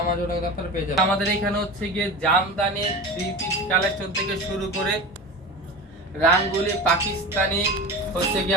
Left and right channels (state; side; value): normal; both; correlation 0.30